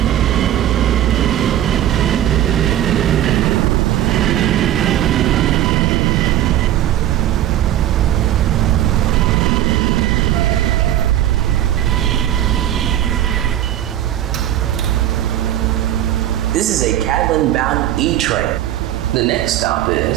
This is a Cadland bound E train. The next stop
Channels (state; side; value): quieter; left; 12.4 dB